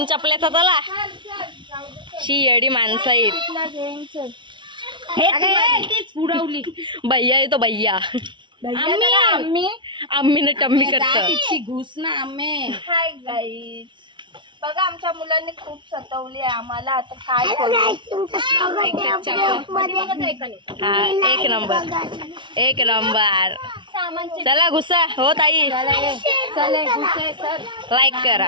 चपल्याचा चला, शी येडी माणसं आहेत। पुरवली भैया आहे तो भैया, आम्ही ना टम्मी करतो घुस ना आम्ही। हाय गाईज, बघा आमच्या मुलांनी खूप सतवली आहे आम्हाला। आता काय एक नंबर एक नंबर चला घुसा हो ताई लाईक करा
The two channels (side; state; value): left; late; 0.24 ms